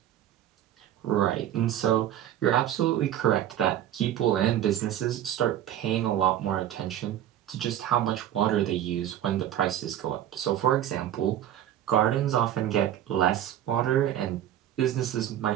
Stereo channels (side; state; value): left; quieter; 11.5 dB